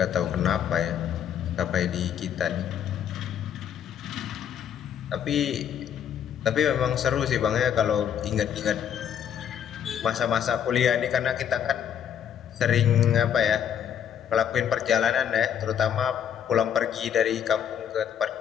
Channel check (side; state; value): right; quieter; 8.9 dB